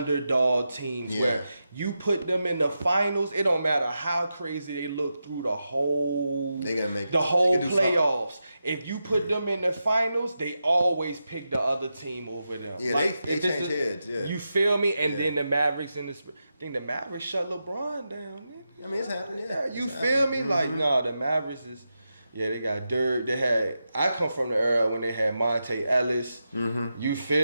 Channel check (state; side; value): inverted; both; correlation -0.89